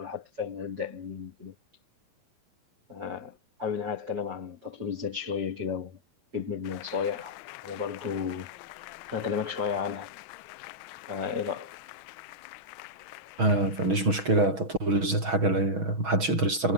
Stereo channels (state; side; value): late; left; 6.3 ms